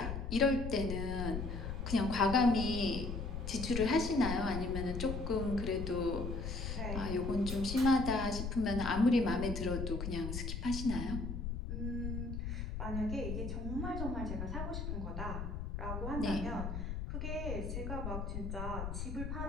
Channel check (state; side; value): noise; left; rumble, 4 dB below the sound